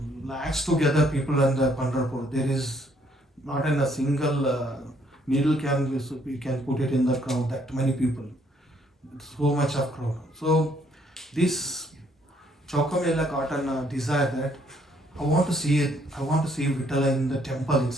lakhs together people in the Pandharpur. There is not in a single needle we can put it in the crowd. That many people, so much of crowd. So this Chokamela got a desire that I want to see it. I want to see Vitala in the temple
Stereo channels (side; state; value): both; normal; correlation 0.67